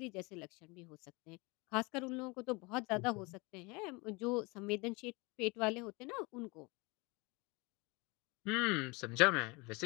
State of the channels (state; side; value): quieter; right; 26.7 dB